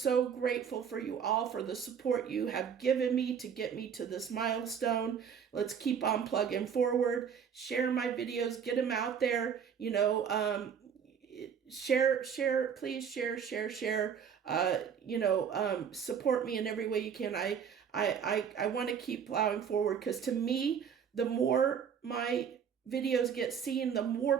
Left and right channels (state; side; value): quieter; left; 7.5 dB